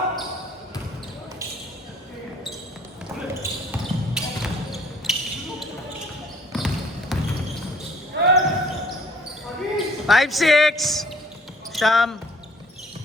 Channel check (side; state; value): both; normal; correlation 0.57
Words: Five, 6. Sham.